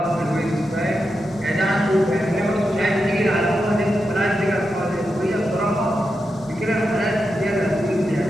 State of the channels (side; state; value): both; normal; correlation 0.88